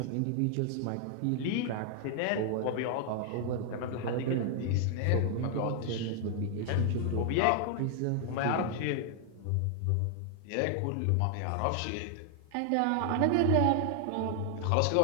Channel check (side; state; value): both; different; correlation 0.00